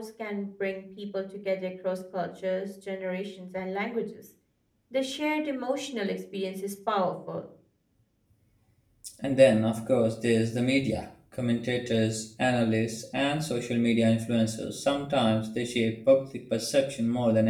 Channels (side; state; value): both; identical; correlation 1.00